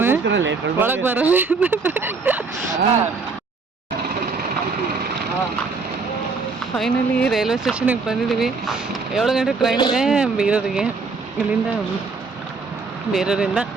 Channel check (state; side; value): quieter; left; 4.4 dB